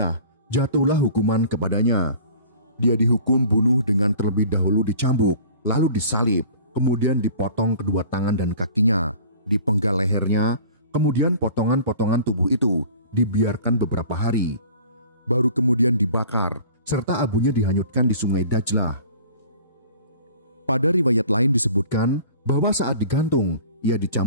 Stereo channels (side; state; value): both; inverted; correlation -0.46